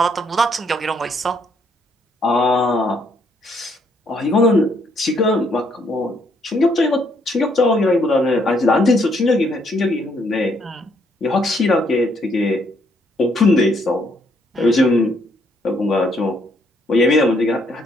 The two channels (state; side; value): normal; both; correlation 0.70